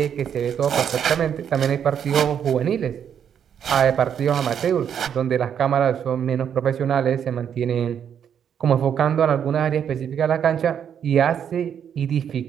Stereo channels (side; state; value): left; quieter; 8.5 dB